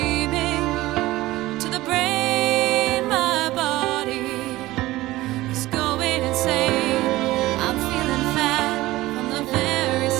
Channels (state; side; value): quieter; left; 17.7 dB